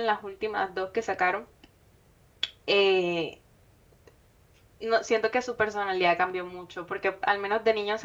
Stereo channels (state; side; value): identical; both; correlation 1.00